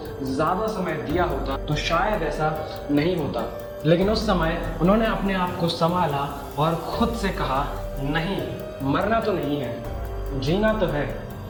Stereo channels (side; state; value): both; identical; correlation 1.00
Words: ज़्यादा समय दिया होता तो शायद ऐसा नहीं होता। लेकिन उस समय उन्होंने अपने आप को संभाला और खुद से कहा, नहीं, मरना तो नहीं है, जीना तो है।